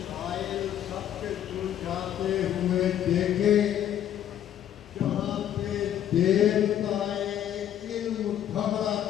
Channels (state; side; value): quieter; right; 10.7 dB